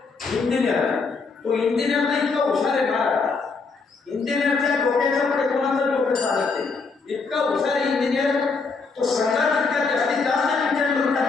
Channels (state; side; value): quieter; right; 4.5 dB